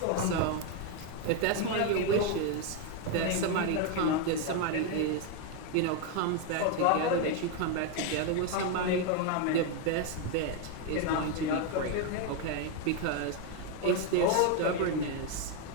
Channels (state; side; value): different; both; correlation 0.01